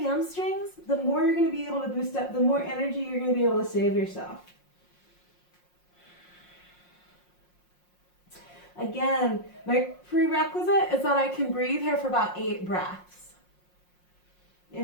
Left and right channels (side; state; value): right; late; 5.6 ms